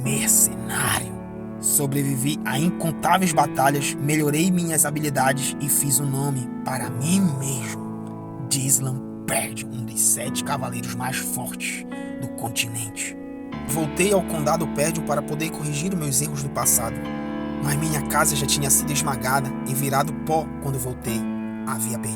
mercenário. Sobrevivi a incontáveis batalhas, melhorei minhas habilidades e fiz um nome para mim mesmo. Dislan Perdion, um dos 7 cavaleiros mais fortes do continente. Voltei ao condado Perdion para poder corrigir meus erros do passado. Mas minha casa já tinha sido esmagada e virado pó quando voltei. Havia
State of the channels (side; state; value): both; identical; correlation 1.00